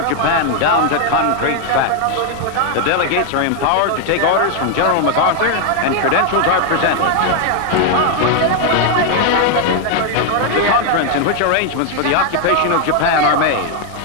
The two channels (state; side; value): different; both; correlation 0.01